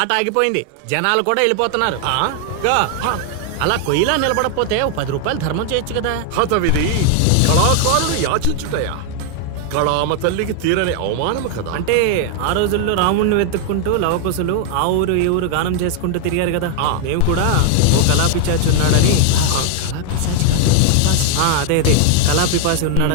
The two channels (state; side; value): different; both; correlation 0.00